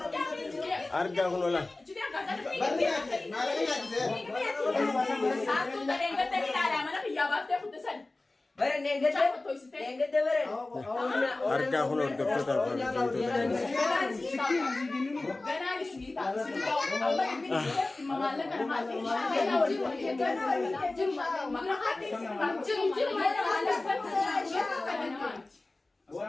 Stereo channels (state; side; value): quieter; right; 3.0 dB